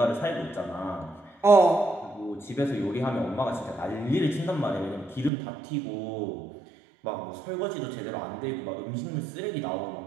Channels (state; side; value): drops out; left; at 5.3 s